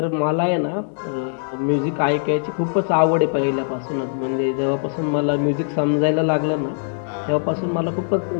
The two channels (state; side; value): silent; right; digital silence